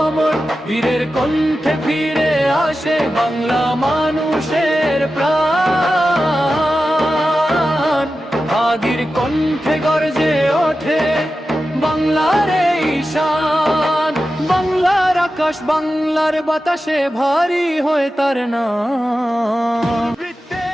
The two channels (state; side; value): normal; both; correlation 0.92